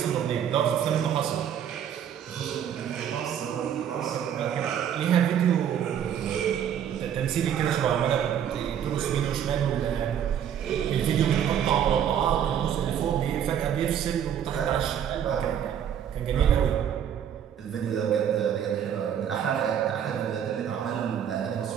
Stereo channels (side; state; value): left; quieter; 9.2 dB